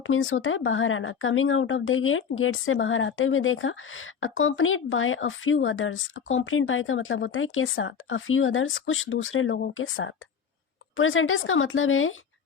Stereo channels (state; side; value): quieter; right; 6.8 dB